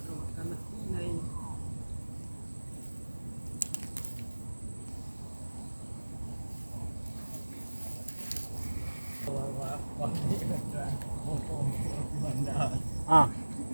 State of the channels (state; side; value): inverted; both; correlation -1.00